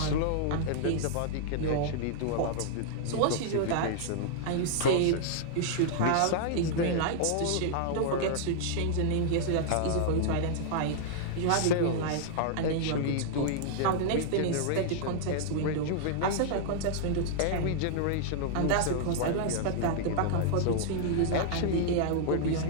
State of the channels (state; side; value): different; both; correlation -0.01